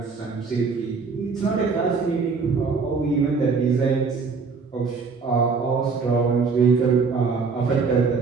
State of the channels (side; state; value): left; quieter; 4.9 dB